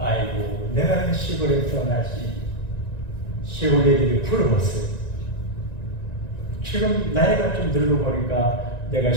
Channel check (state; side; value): late; right; 1.9 ms